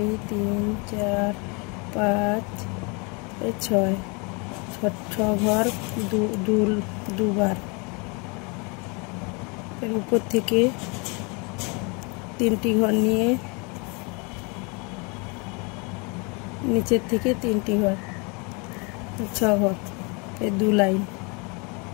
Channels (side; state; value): right; quieter; 31.4 dB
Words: 3 4 5 6 ঘর দুবার। এর উপর থেকে 3টি ঘর নিয়ে নিচের থেকে 3টি ঘর, 6 ঘর, এই 2 লাইন